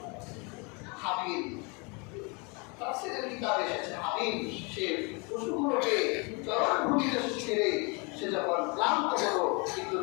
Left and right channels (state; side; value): quieter; right; 31.0 dB